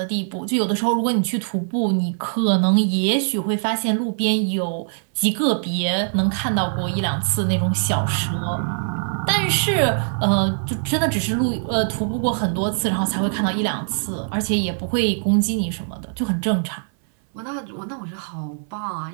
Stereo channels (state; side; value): silent; left; 62 dB below the other